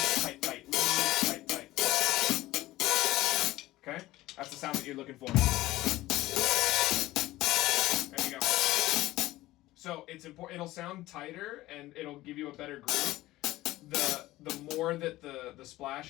tight, tight, loose, tight, tight. Okay? That's the sound that you're looking for. There you go. So it's important. It'll sound tighter and it'll give you a better groove. The more that the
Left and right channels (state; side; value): quieter; right; 17.2 dB